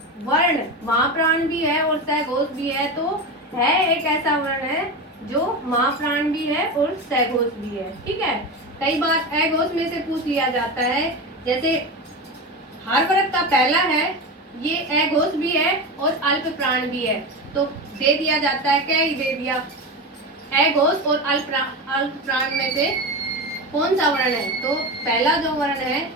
वर्ण महाप्राण भी है और सघोष भी है। तो है एक ऐसा वर्ण है जो महाप्राण भी है और सघोष भी है। ठीक है, कई बार अघोष में से पूछ लिया जाता है, जैसे हर वर्ग का पहला है ये अघोष भी है और अल्प प्राण भी है, तो दे दिया जाता है, क्या ही दे दिया, अघोष और अल्प प्राण में से कौन सा वर्ण है? तो पहला जो वर्ण है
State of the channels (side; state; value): both; normal; correlation 0.22